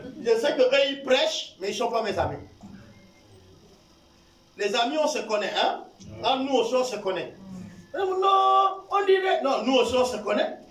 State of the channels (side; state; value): both; identical; correlation 1.00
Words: Je sais qu'eux, ils prêchent, mais ils ne sont pas mes amis. Les amis, on se connaît, hein? Ah, nous aussi, on se connaît. Non, on dirait... Non, nous aussi, on se connaît.